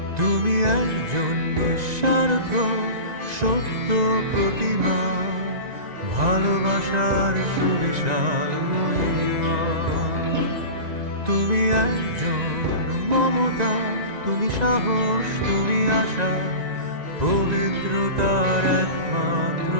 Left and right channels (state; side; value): late; left; 1.9 ms